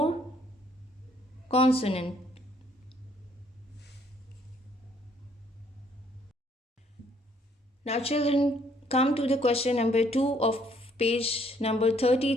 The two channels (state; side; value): normal; both; correlation 0.65